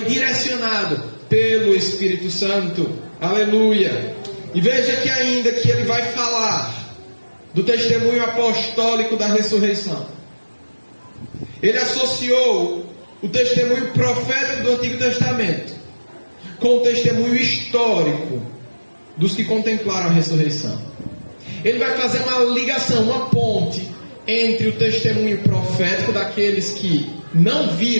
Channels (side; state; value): both; inverted; correlation -1.00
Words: direcionado pelo Espírito Santo. Aleluia. E veja que ainda que ele vai falar do testemunho apostólico da ressurreição. Ele associou o testemunho profético do Antigo Testamento com o testemunho histórico dos que contemplaram a ressurreição. Ele vai fazer uma ligação, uma ponte entre o testemunho profético daqueles que não